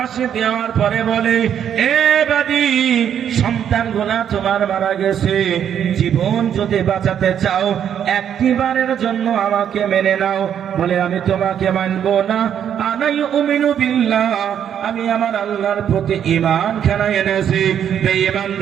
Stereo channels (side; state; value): left; quieter; 9.1 dB